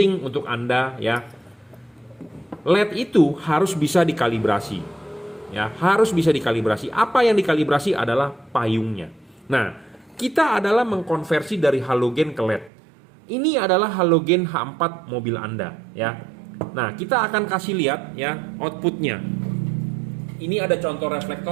untuk Anda ya, LED itu harus bisa dikalibrasi ya, harus bisa dikalibrasi. Apa yang dikalibrasi adalah payungnya. Nah, kita adalah mengkonversi dari halogen ke LED. Ini adalah halogen H4 mobil Anda ya. Nah, kita akan kasih lihat ya outputnya. Ini ada contoh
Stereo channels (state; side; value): drops out; left; at 12.7 s